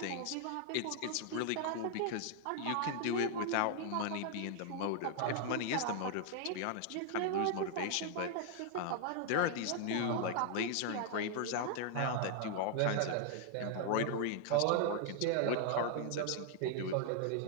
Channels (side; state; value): both; different; correlation 0.00